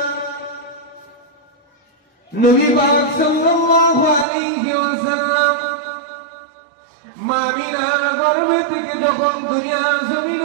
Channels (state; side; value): drops out; left; at 4.2 s